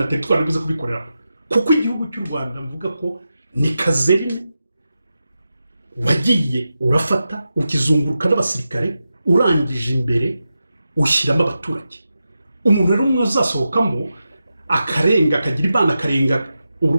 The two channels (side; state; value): both; inverted; correlation -0.90